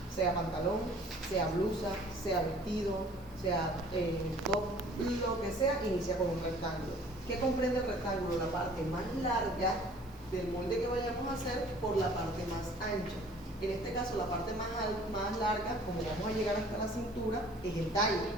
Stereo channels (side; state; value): right; noise; hiss, 28 dB below the sound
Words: Sea pantalón, sea blusa, sea vestido, sea top, lo que sea, inicia con un rectángulo. ¿Qué comprende el rectángulo? La parte más larga del molde que vayamos a hacer por la parte más ancha. En este caso, la parte más larga, como vamos a llegar hasta la cintura, es el talle,